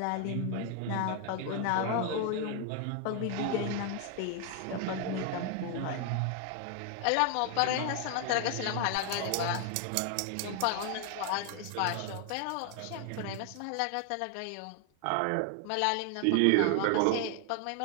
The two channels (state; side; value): different; both; correlation 0.00